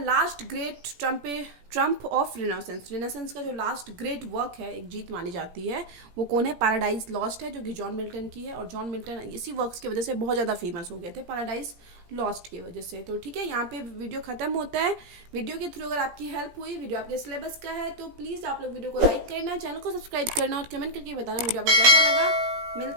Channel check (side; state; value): left; late; 17 ms